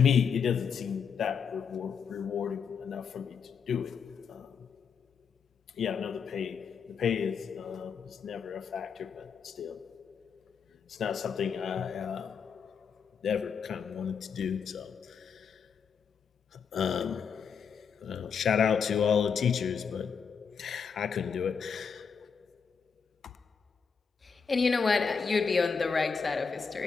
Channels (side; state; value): right; quieter; 6.3 dB